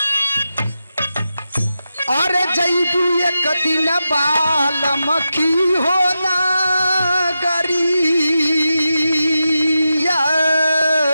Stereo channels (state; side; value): inverted; both; correlation -0.89